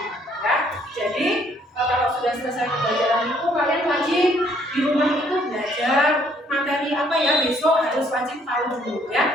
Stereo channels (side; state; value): both; normal; correlation 0.65